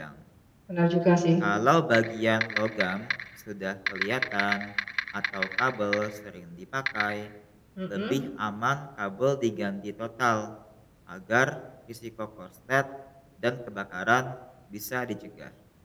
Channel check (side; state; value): both; identical; correlation 1.00